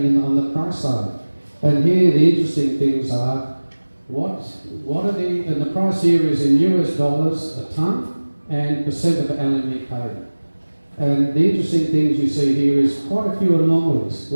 on the price side? And here the interesting things are what are and the price here is in US dollars a tonne and percent of LME paid. And the interesting things you see here is quite a few anomalies.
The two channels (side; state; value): both; inverted; correlation -1.00